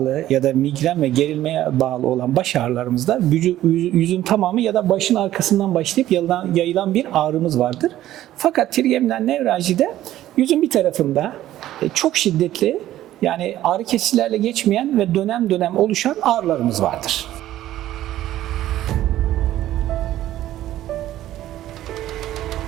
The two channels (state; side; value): quieter; left; 13.6 dB